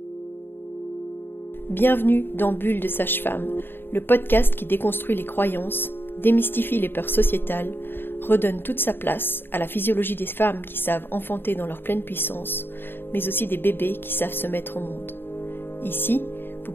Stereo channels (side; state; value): right; late; 0.10 ms